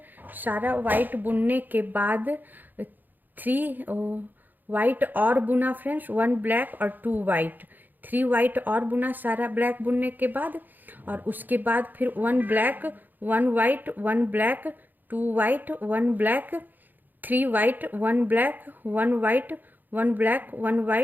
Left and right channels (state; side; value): late; left; 0.087 ms